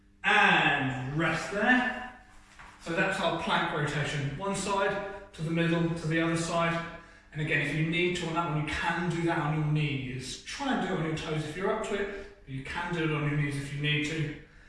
And rest there. So that's our plank rotation. One side to the middle to the other side. And again, if you need to on that one, you can do that on your knees. Try and do it on your toes if you're up to it, but you can do it on your knees if you need to.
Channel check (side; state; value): both; identical; correlation 1.00